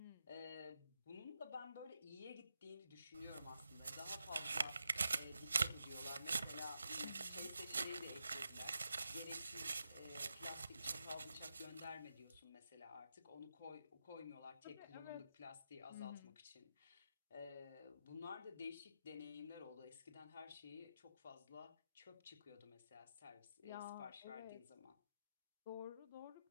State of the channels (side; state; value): both; inverted; correlation -0.86